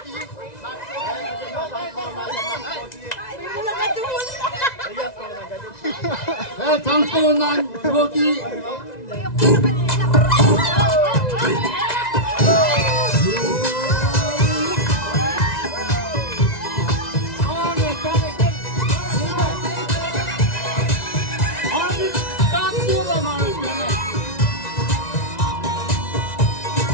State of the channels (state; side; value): late; right; 1.9 ms